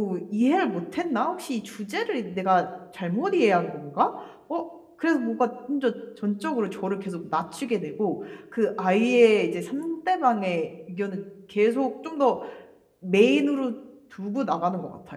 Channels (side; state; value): both; identical; correlation 1.00